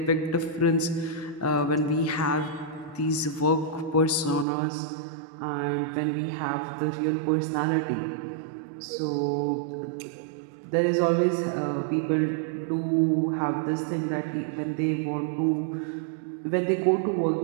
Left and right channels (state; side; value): drops out; left; at 4.5 s